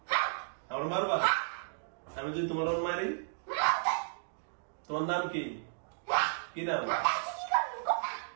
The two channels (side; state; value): left; silent; digital silence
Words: আমার মারবা, আমি যদি তোমার মারি? তোমার নাম কি? কি নাম?